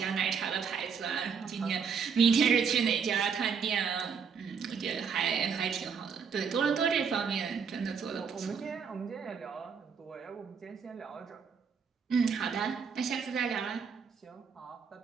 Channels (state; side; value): quieter; left; 6.3 dB